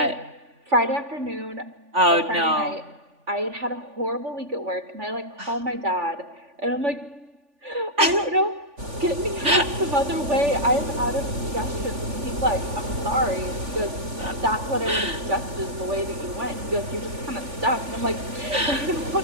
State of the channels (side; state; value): left; late; 3.5 ms